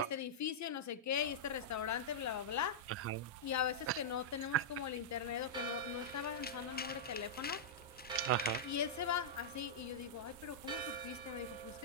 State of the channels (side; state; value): both; normal; correlation -0.10